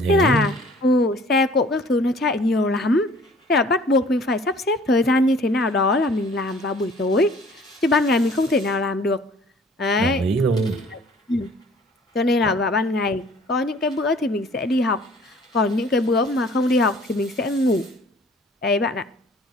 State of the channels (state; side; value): normal; both; correlation 0.53